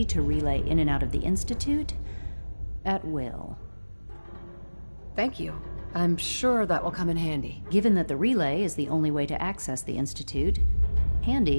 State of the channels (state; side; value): inverted; both; correlation -1.00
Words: to relay in and out of the Institute at will. Thank you. I'm sure that will come in handy. Given that the relay is the only way to access the Institute,